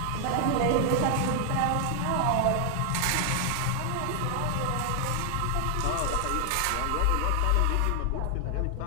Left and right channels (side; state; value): both; different; correlation 0.00